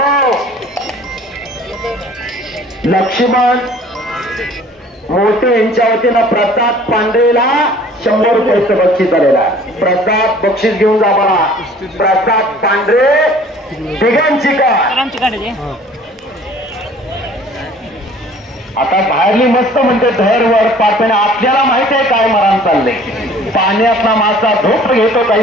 लक्ष्मण मोठे यांच्या वतीनं प्रसाद पांढरेला 100 रुपयाचं बक्षीस झालेला आहे. प्रसाद बक्षीस घेऊन जा मला. प्रसाद पांढरे तिघांची का आता बाहेरली मस्त म्हणते धैर्यवर पापणे. आपल्याला माहित आहे काय मरण चाललंय. पाण्यातला मासा झोप घेतो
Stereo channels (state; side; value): normal; both; correlation 0.51